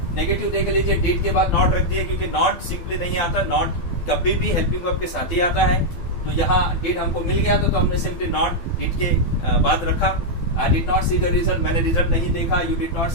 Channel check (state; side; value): late; right; 12 ms